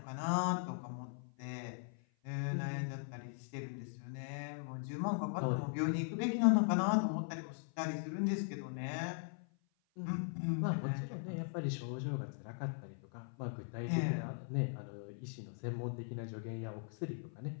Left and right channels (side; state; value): right; silent; 51 dB below the other